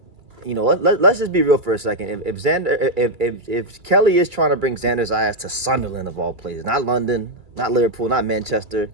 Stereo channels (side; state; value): left; late; 2.3 ms